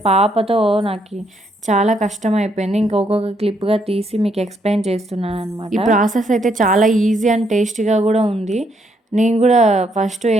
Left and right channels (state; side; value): normal; both; correlation 0.73